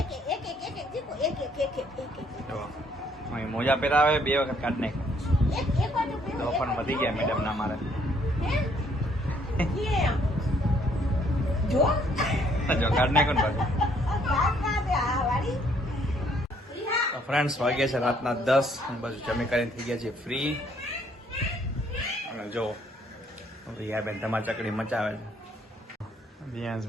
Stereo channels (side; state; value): both; normal; correlation 0.66